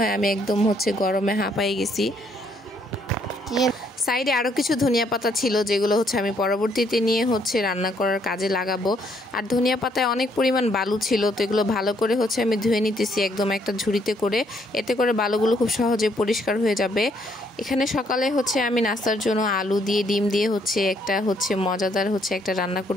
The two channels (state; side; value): normal; both; correlation 0.69